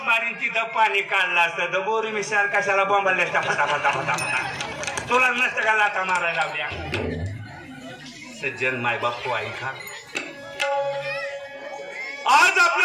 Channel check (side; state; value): both; identical; correlation 1.00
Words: मारीन तिथं पाणी काढलं असतं तर बोरी मिशाल कशाला बॉम्बाला फटा तुला नसतं का लाटा मारायला लावल्या. सज्जन मायबाप हो ऐका आज